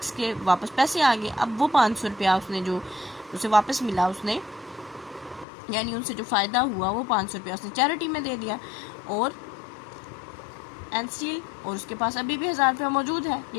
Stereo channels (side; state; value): right; drops out; at 5.5 s